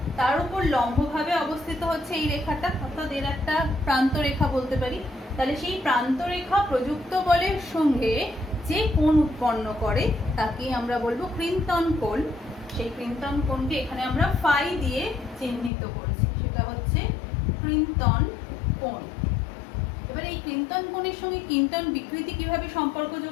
তার উপর লম্বভাবে অবস্থিত হচ্ছে এই রেখাটা, অর্থাৎ এর একটা প্রান্ত রেখা বলতে পারি। তাহলে সেই প্রান্ত রেখা প্রযুক্ত বলের সঙ্গে যে কোণ উৎপন্ন করে তাকে আমরা বলবো ক্রিন্তন কোণ। সেই ক্রিন্তন কোণকে এখানে আমরা ফাই দিয়ে চিহ্নিত করেছি, সেটা হচ্ছে ক্রিন্তন কোণ। এবার এই ক্রিন্তন কোণের সঙ্গে ক্রিন্তন বিকৃতি কিভাবে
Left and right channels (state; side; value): drops out; right; at 15.7 s